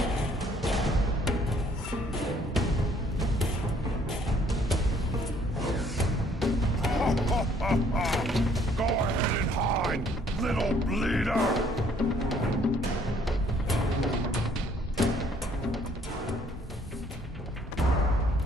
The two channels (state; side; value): normal; both; correlation 0.62